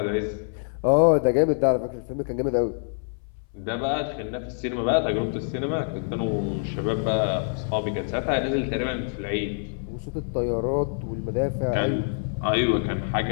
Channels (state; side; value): silent; right; 61 dB below the other